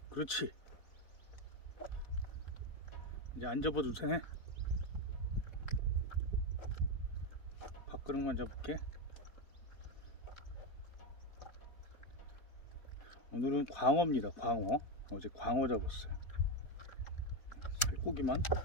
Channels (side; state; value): right; late; 4.1 ms